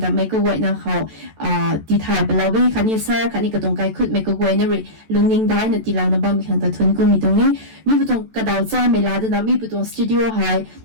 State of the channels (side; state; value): left; late; 14 ms